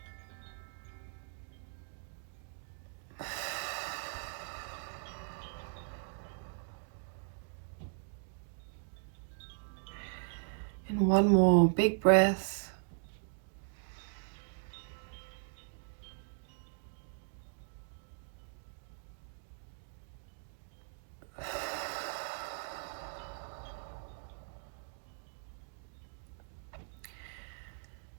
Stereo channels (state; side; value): silent; left; digital silence